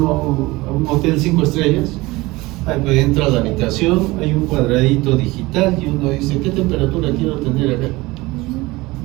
a un hotel 5 estrellas, ahí entra a la habitación, hay un cuadradito digital y uno dice, ¿qué temperatura quiero tener acá?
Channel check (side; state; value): left; quieter; 21.1 dB